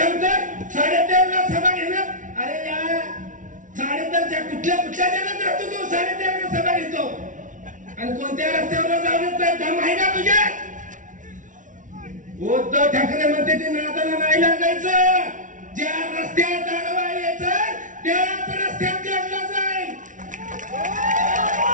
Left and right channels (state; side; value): late; left; 0.37 ms